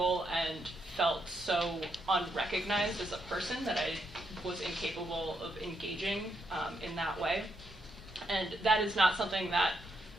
and felt so unrecognized as a person that I was incapable of engaging in that way. And that is not something that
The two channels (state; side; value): normal; both; correlation 0.79